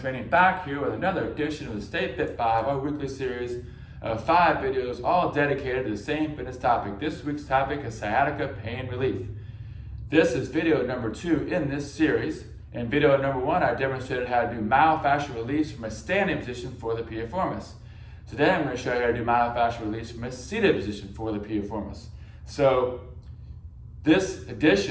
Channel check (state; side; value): identical; both; correlation 1.00